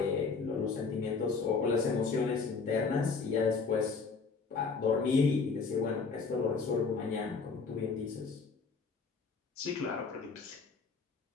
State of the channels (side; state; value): right; quieter; 4.8 dB